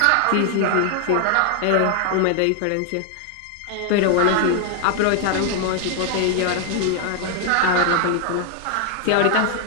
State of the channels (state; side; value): different; both; correlation 0.00